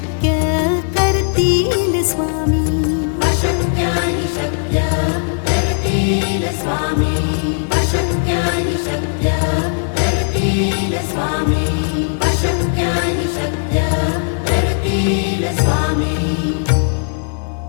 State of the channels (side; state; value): right; silent; digital silence